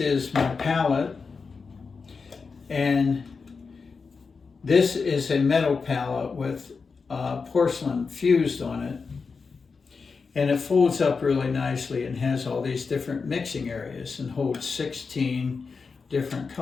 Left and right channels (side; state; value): right; quieter; 4.9 dB